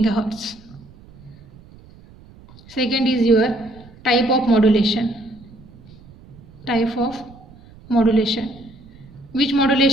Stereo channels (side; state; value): right; noise; rumble, 23 dB below the sound